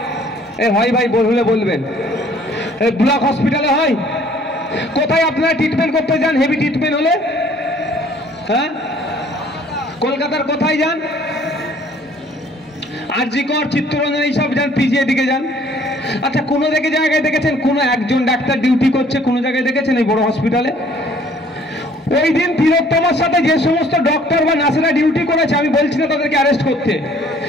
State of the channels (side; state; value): both; normal; correlation 0.57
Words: হয় ভাই, বললে বলবেন। ব্লক হসপিটালে হয়? কোথায় আপনারা ট্রিটমেন্ট করতে যান হেভি ট্রিটমেন্ট হলে? হ্যাঁ, কলকাতার কোথায় যান, আরজিকর, চিত্তরঞ্জন, এইসব যান, পিজিআই দিকে যান। আচ্ছা, কোনো জায়গায় দেখেছেন কোনো একজন ডাক্তার ডিউটি করছে? কোনো জায়গায় দেখেছেন এই বড় হসপিটালে? ওই দিন তিলোত্তমার সাথে যে সমস্ত ডক্টর বা নার্সেরা ডিউটি করেছে, আমি বলছি না তাদেরকে অ্যারেস্ট করতে,